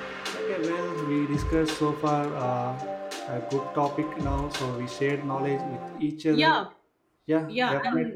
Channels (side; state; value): both; identical; correlation 1.00